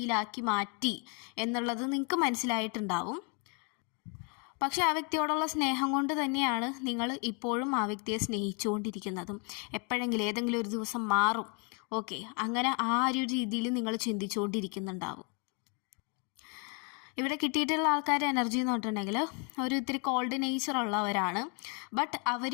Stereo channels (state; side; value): quieter; right; 35.7 dB